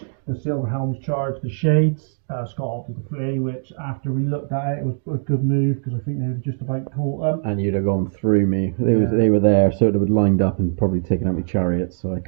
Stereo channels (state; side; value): silent; left; digital silence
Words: The Silver Helms charged the Shades. Scott opted to flee, which after we looked at it was a good move because I think they would have just about caught them. And you'd have gone through me. They were there, so it would have lined up and probably taken out my chariots, so I